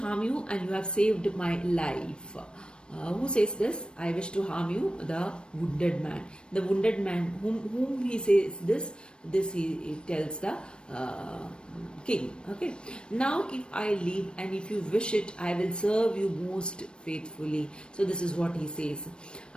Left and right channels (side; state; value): right; late; 0.055 ms